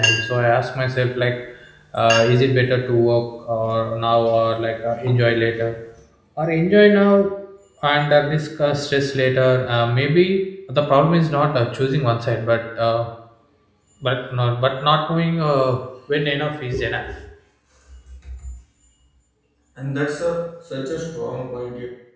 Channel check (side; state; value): both; identical; correlation 1.00